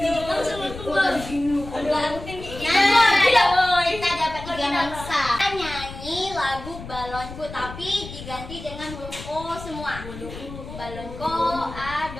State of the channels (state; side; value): noise; left; rumble, 12 dB below the sound